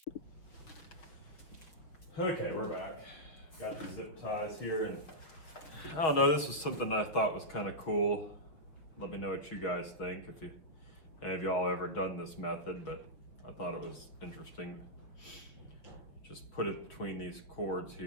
Okay, we're back. Got the zip ties here, and I don't know, this was something I thought was kind of cool. Let me know what you guys think, if any of y'all ever done this method, but I thought it was interesting. Just put it between these cords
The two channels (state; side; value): late; right; 6.0 ms